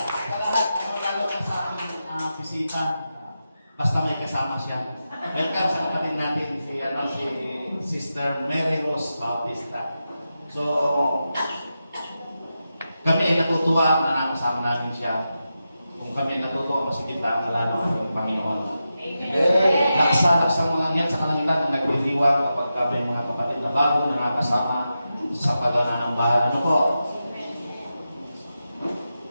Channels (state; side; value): inverted; both; correlation -0.90